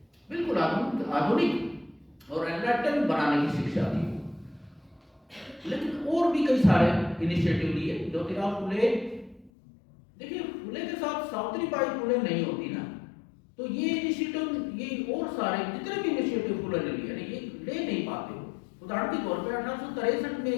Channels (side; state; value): right; drops out; at 9.5 s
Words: बिल्कुल आधुनिक और एनलाइटन बनाने की शिक्षा थी। लेकिन और भी कई सारे इनिशिएटिव लिए। ज्योतिराव फुले, देखिए फुले के साथ सावित्रीबाई फुले नहीं होती ना, तो ये इनिशिएटिव, ये और सारे जितने भी इनिशिएटिव फुले ने लिए ये ले नहीं पाते हो। उदाहरण के तौर पर 1863 में